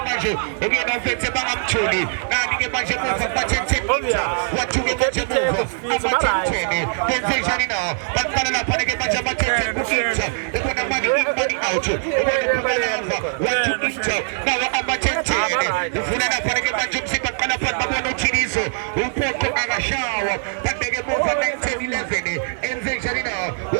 manje ukuyena ufethe bangamtholi nani ke manje muva ba-10 meter wathuke manje muva ama-10 benze njani na baqala lapha ke manje ama-10 ku-inter ebona mani in mani out ubona phumelava wathu inter nawo ama-10 ufuna lapha ke manje umzimba qala phansi babona uthiniso uphoko akashawa babeke muva 19-11 enze njani na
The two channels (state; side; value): silent; left; digital silence